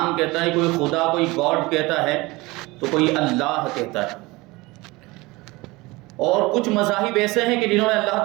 کہتا ہے، کوئی خدا، کوئی گاڈ کہتا ہے، تو کوئی اللہ کہتا ہے۔ اور کچھ مذاہب ایسے ہیں کہ جنہوں نے اللہ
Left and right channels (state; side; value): quieter; left; 22.3 dB